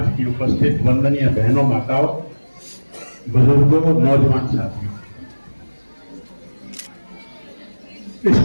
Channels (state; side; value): inverted; both; correlation -1.00